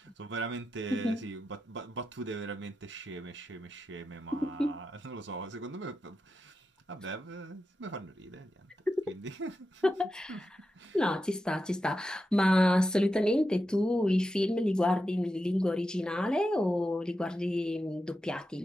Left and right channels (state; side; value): normal; both; correlation 0.89